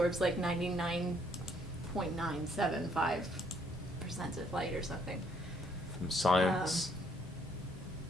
like 99.975% of light or something. From sciencealert.com.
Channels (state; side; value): normal; both; correlation 0.67